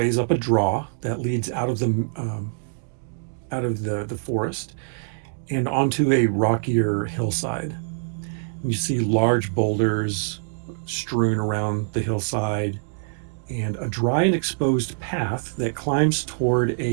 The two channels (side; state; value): left; silent; digital silence